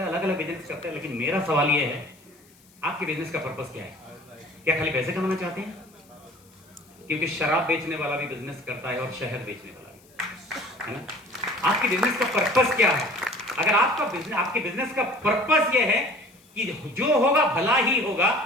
अलग अलग बिजनेस करता है, लेकिन मेरा सवाल ये है, आपके बिजनेस का पर्पस क्या है? क्या खाली पैसे कमाना चाहते हैं? क्योंकि शराब बेचने वाला भी बिजनेस करता है और शहद बेचने वाला भी, है ना? आपके बिजनेस का पर्पस क्या है? अगर आपके बिजनेस का पर्पस यह है कि जो होगा भला ही होगा,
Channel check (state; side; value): noise; left; hiss, 29 dB below the sound